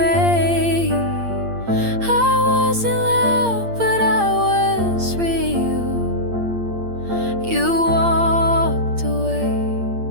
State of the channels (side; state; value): left; late; 8.6 ms